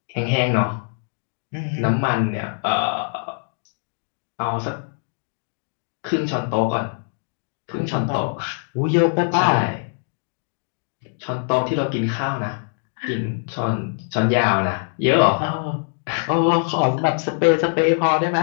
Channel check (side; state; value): right; silent; digital silence